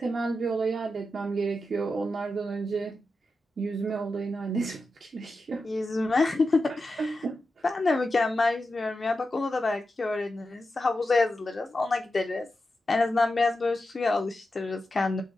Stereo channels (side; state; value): both; normal; correlation 0.90